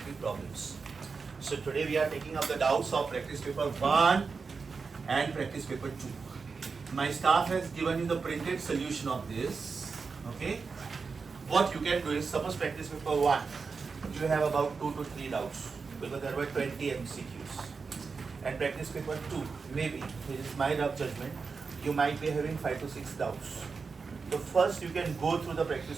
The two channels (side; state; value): left; quieter; 4.9 dB